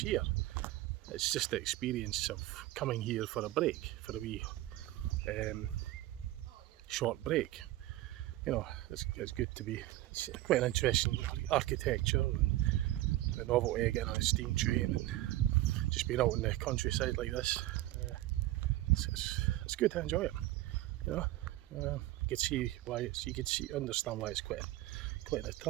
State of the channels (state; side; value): quieter; left; 16.1 dB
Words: it's just the experience of coming here for a break, for a wee short break. You know, it's good to be. It's quite an interesting architecture and the novelty of getting on a steam train and just being out in the countryside like this. It's good to enjoy it. You know, you can see why understand why it's quite an